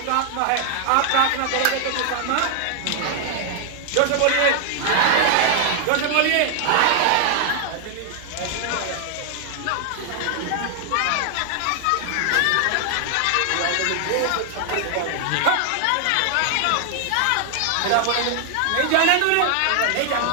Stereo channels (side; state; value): both; different; correlation 0.00